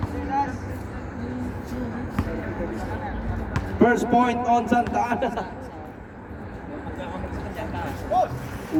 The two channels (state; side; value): identical; both; correlation 1.00